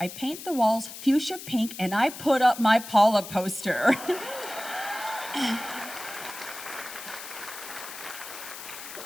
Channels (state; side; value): noise; left; hiss, 12 dB below the sound